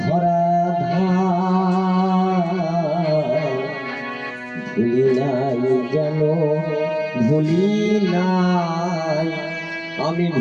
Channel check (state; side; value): identical; both; correlation 1.00